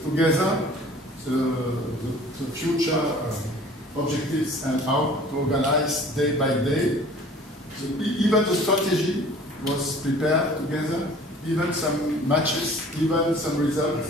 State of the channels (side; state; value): both; normal; correlation 0.48